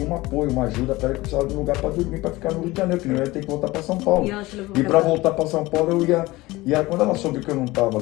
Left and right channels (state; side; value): quieter; right; 19.8 dB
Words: um apoio, uma ajuda para ela, que precisava de um lugar para dormir, para ficar no Rio de Janeiro, que não ia ter que voltar para São Paulo. E para voltar para São Paulo eu ia... E aí, quando ela soube que eu não estava